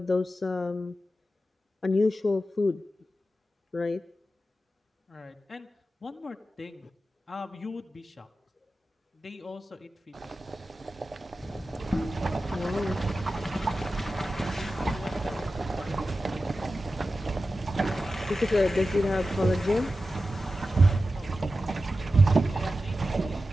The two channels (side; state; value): both; normal; correlation 0.92